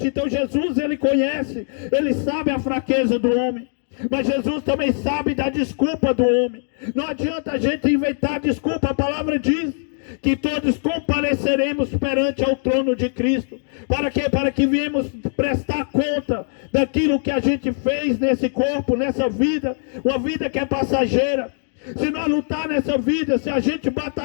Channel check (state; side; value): silent; right; 56 dB below the other